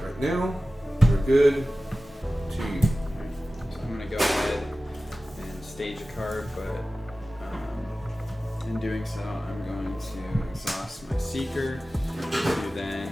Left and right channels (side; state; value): both; normal; correlation 0.96